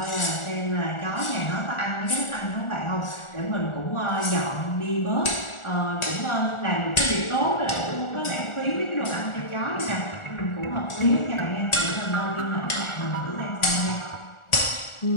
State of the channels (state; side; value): late; right; 1.4 ms